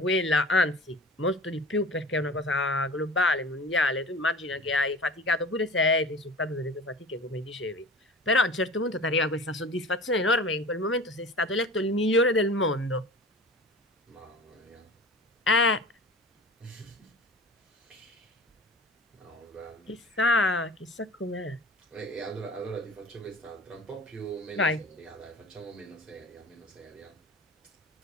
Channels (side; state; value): both; normal; correlation 0.38